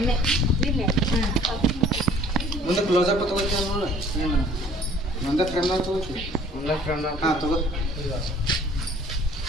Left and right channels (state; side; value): normal; both; correlation 0.54